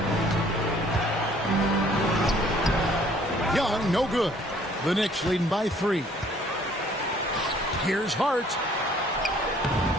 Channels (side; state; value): both; normal; correlation 0.58